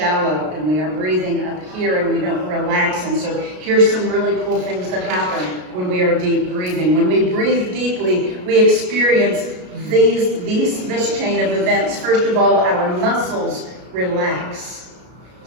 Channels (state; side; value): late; left; 33 ms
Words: and we are breathing up here and we don't relax. And so here's some really cool things that happen when we are deep breathing. When we breathe deeply, we experience this chain of events. First of all, our muscles relax.